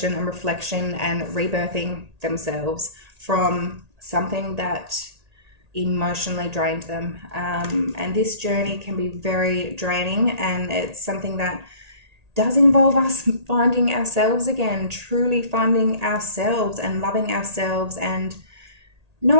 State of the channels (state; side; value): late; left; 1.8 ms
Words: and reflection and rebirthing themselves from something that emotionally drained them. And this journey can be very draining, and it's something that does involve us finding ourselves again, truly finding ourselves and loving ourselves, and